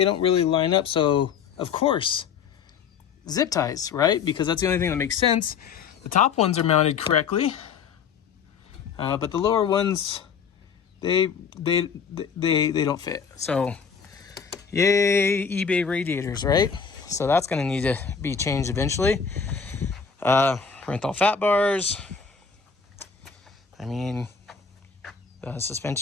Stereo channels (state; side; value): quieter; right; 6.3 dB